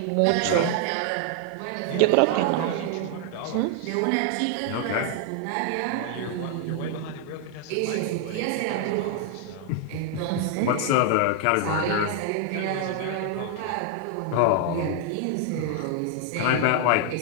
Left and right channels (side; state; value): both; different; correlation 0.00